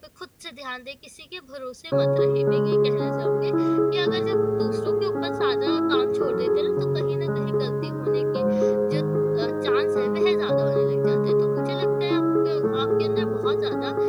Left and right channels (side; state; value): both; identical; correlation 1.00